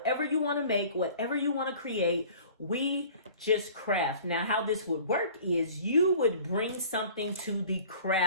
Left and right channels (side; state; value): both; inverted; correlation -0.47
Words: you want to make, whatever you want to create, we just craft. Now, how this would work is you would bring something to the